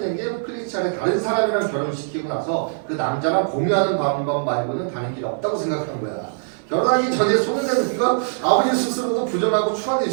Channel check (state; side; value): silent; left; 60 dB below the other